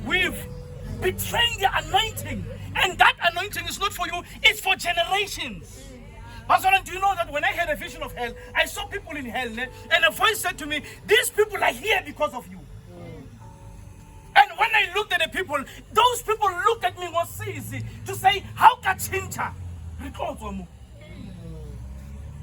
We've betrayed the anointing. And that anointing is not for you, it's for generations. Pastor, do you know that when I had a vision of hell, I saw people in hell, and a voice said to me, "These people are here because of you." And when I looked at the people, those people looked at me was easy to say, "How can chincha?"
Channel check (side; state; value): both; identical; correlation 1.00